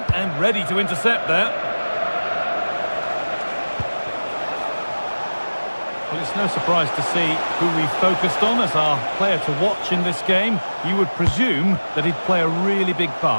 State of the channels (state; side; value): inverted; both; correlation -1.00